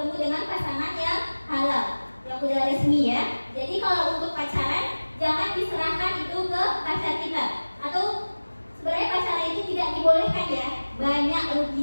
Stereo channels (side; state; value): both; inverted; correlation -1.00